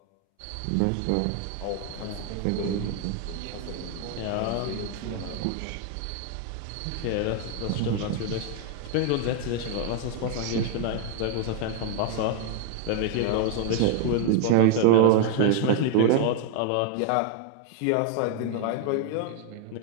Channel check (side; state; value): both; different; correlation 0.00